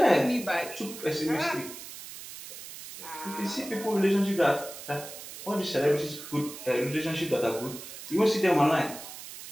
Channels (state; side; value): noise; right; hiss, 12 dB below the sound